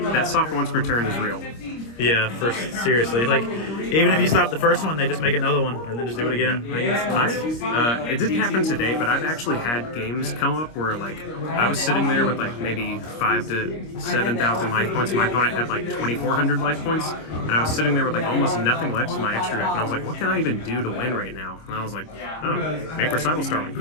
That soft once per turn is real. Yeah, seriously. Like, even if you stop the first one, they just make another one and then just do it again. It didn't happen today, but I've actually had games come up where, like, I was sitting there with, like, maybe 5,000 to 7,000 life points, and my opponent had, like, 2,400 life points, and I was sitting there with, like, almost nothing left in my extra deck, and I was like, what can I even do to win right now? And I was like, oh, make Recital Starling,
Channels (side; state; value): right; late; 25 ms